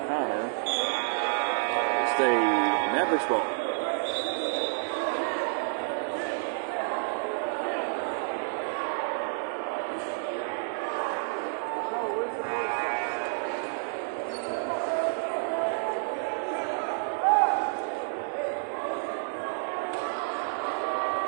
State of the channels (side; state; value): left; silent; digital silence